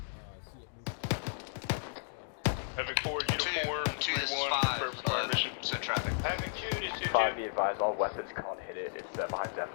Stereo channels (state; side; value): silent; right; digital silence